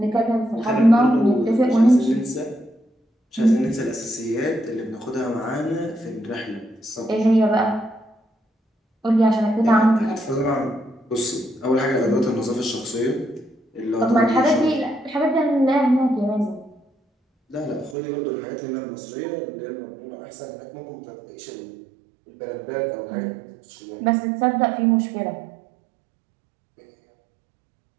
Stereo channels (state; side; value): drops out; left; at 17.9 s